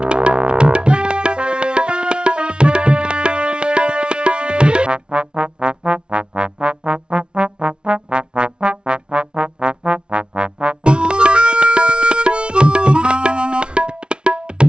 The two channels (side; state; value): left; late; 0.056 ms